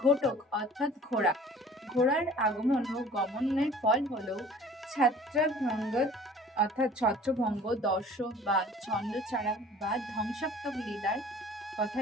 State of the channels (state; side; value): normal; both; correlation 0.48